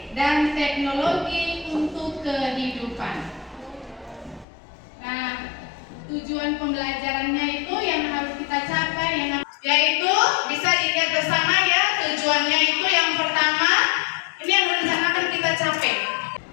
dan teknologi untuk kehidupan. Nah, tujuan pembelajarannya itu yang harus kita capai yaitu bisa dilihat bersama ya, tujuannya itu yang pertama ini yang rencanakan kita capai,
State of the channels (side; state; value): right; drops out; at 4.5 s